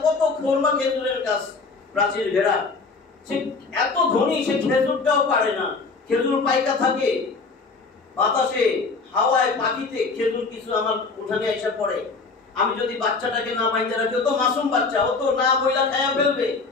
কত খোরমা খেজুরের গাছ প্রাচীর ঘেরা, সে এত ধনী, সে খেজুরটাও পারে না। খেজুর পাইকা থাকে বাতাসে, হাওয়ায়, পাখিতে, খেজুর কিছু আমার উঠানে এসে পড়ে। আমি যদি বাচ্চাটাকে না বাইন্ধে রাখি, ও তো মাসুম বাচ্চা, ও তো না বইলা খায়া ফেলবে।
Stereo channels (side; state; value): right; quieter; 4.3 dB